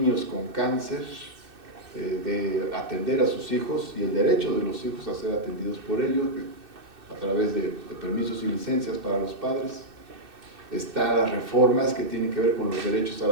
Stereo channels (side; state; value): left; late; 2.6 ms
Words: con cáncer, de atender a sus hijos y el derecho de los hijos a ser atendidos por ellos a través de permisos y licencias para los padres. Están las reformas que tienen que ver con los derechos a